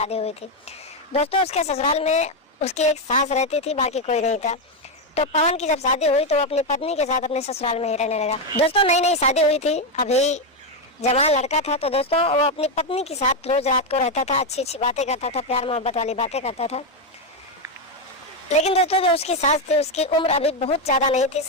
हुई थी। दोस्तों उसके ससुराल में उसकी एक सास रहती थी, बाकी कोई नहीं था। तो पवन की जब शादी हुई तो वो अपनी पत्नी के साथ अपने ससुराल में ही रहने लगा। दोस्तों नई नई शादी हुई थी, अभी जवान लड़का था। तो दोस्तों वो अपनी पत्नी के साथ रोज रात को रहता था, अच्छी अच्छी बातें करता था, प्यार मोहब्बत वाली बातें करता था। लेकिन दोस्तों जो उसकी सास थी उसकी उम्र अभी बहुत ज़्यादा नहीं थी,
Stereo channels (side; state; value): both; normal; correlation 0.06